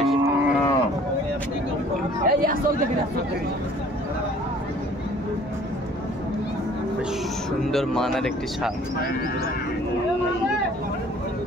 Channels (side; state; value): both; normal; correlation 0.53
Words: বেশ সুন্দর মানের একটি ষাঁড়।